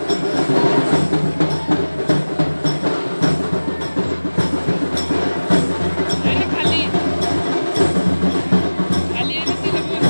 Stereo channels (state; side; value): inverted; both; correlation -1.00